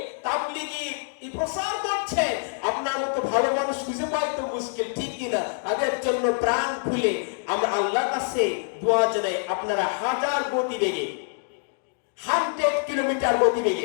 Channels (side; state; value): right; silent; digital silence